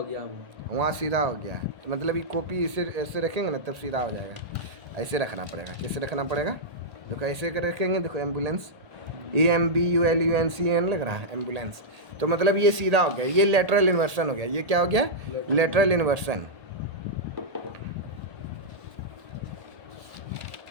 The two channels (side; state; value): left; late; 1.8 ms